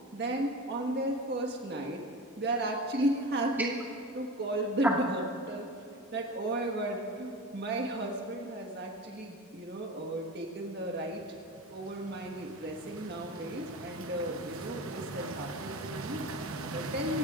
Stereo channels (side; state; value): both; normal; correlation 0.31